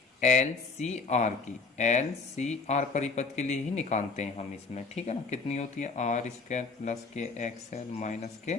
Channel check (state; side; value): quieter; right; 4.3 dB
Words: LCR की। LCR परिपथ के लिए ही निकालते हैं हम इसमें। ठीक है ना, कितनी होती है? R² प्लस के XL माइनस के